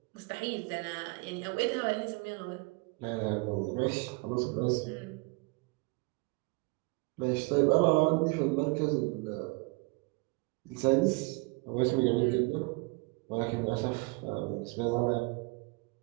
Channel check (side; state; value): left; quieter; 28.2 dB